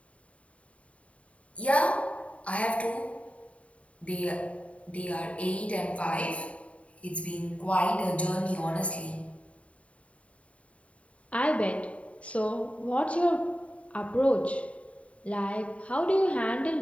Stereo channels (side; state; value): right; late; 0.064 ms